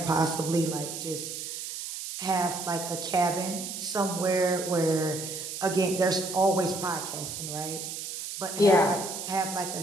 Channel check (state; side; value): noise; right; hiss, 7 dB below the sound